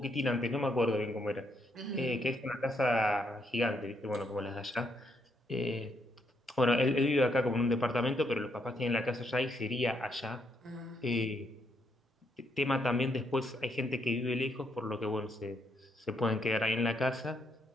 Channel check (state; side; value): normal; both; correlation 0.75